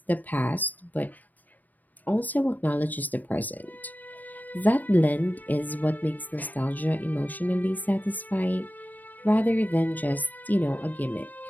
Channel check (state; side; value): late; right; 0.083 ms